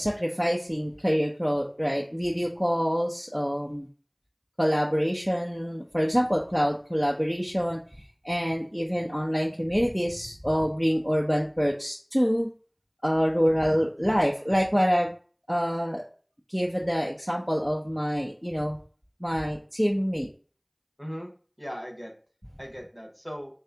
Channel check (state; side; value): identical; both; correlation 1.00